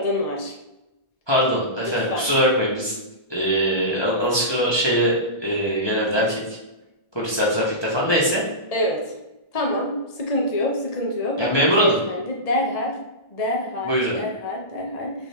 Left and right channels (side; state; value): right; late; 1.2 ms